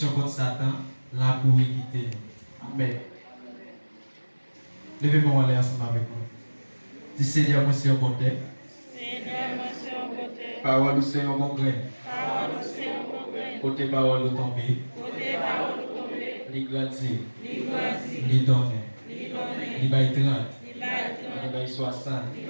contre Satan, la pour quitter nous. Amen. Levez-moi aller ensemble avec moi. Dis Seigneur, moi c'est un bon terre. Seigneur, moi c'est un côté. Parole, c'est un bon grain. Parole, c'est un bon grain. Côté parole, au tomber. Côté parole, tomber. Li grandir. Li grandir. Li donner. Li donner. Li bay 30. Li bay 30. Li bay 60. Li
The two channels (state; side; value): inverted; both; correlation -1.00